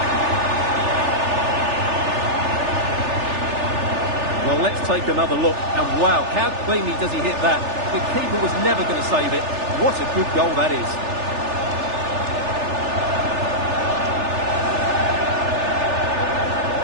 Well, let's take another look. And wow, how cleanly does he hit that? The keeper was never going to save it. What a good goal that is.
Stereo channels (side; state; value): left; late; 3.4 ms